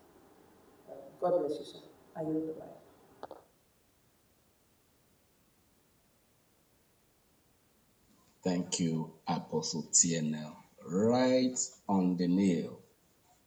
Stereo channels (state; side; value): identical; both; correlation 1.00